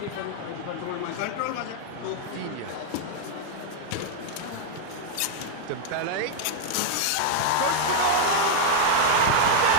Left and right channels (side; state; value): both; different; correlation 0.00